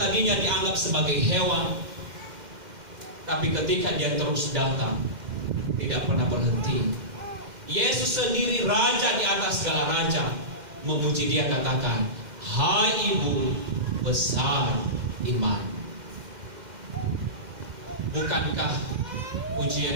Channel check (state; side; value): late; left; 2.1 ms